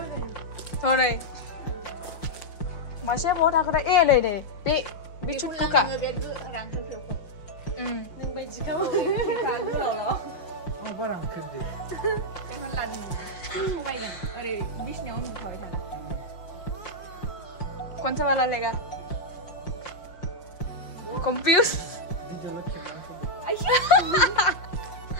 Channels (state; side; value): late; right; 5.6 ms